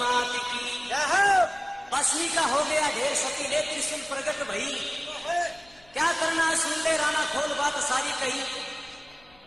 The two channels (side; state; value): left; noise; rumble, 28 dB below the sound